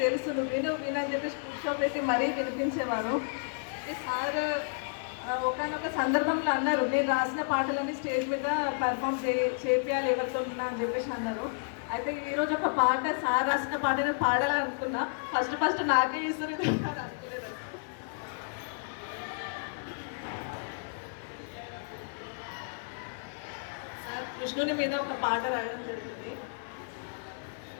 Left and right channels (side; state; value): right; silent; digital silence